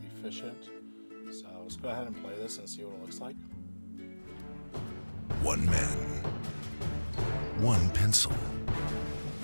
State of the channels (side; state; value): both; inverted; correlation -1.00